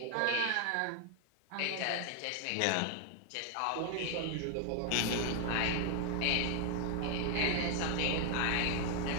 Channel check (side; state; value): both; different; correlation 0.00